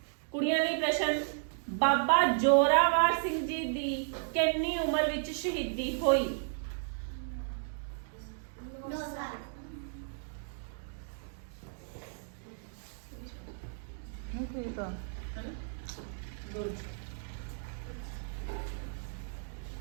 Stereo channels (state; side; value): silent; left; digital silence